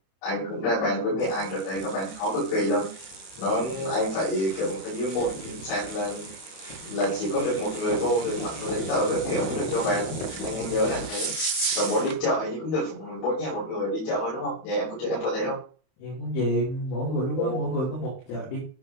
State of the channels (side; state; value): right; late; 31 ms